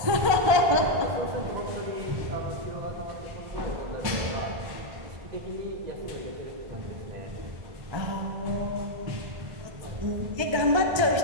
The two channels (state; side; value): late; left; 1.3 ms